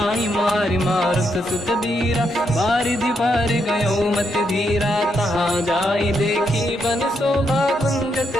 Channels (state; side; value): normal; both; correlation 0.79